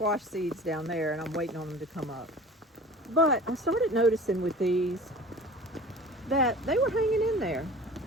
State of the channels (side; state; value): both; normal; correlation 0.41